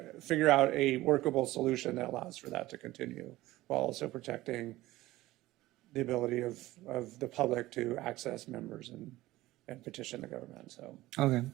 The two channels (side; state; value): left; quieter; 17.2 dB